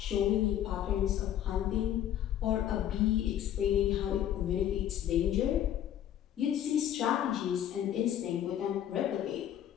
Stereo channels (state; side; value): quieter; right; 10.9 dB